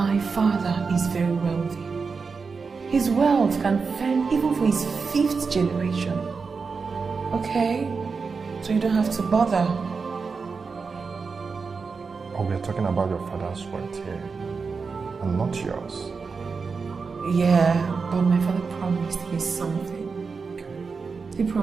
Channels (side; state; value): left; quieter; 4.9 dB